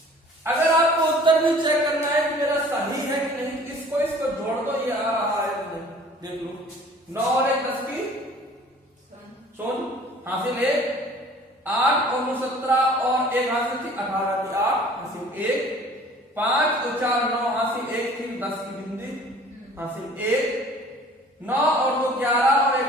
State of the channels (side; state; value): both; normal; correlation 0.49